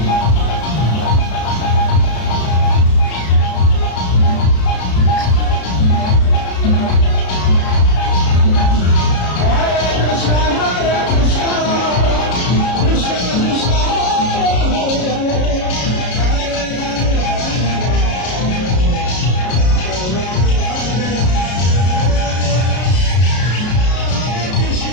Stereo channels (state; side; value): late; right; 33 ms